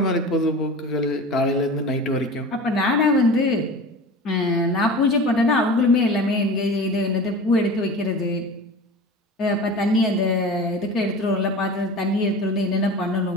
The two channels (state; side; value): normal; both; correlation 0.35